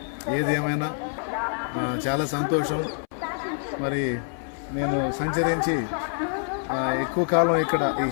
ఏది ఏమైనా చాలా సంతోషం. మరి నేను సంచరించి ఎక్కువ కాలం ఇక్కడ ఈ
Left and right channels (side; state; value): right; silent; 61 dB below the other